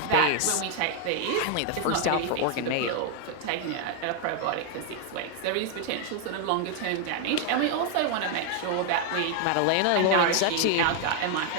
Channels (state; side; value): different; both; correlation 0.00